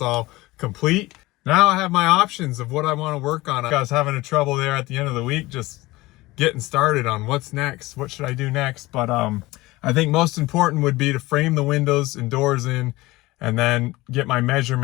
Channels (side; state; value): right; quieter; 19.8 dB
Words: all complete. Now I have my options of what I want to work on. I was having a trouble there at the end of the week just getting started on what's next. What should I do next? But I think most important would be to frame the windows and doors in and then get my